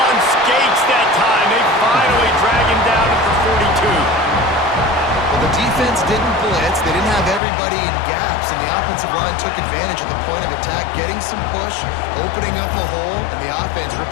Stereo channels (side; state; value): right; drops out; at 7.4 s